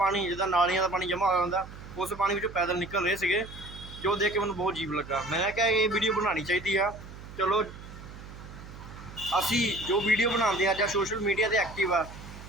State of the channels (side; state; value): right; noise; hum, 14 dB below the sound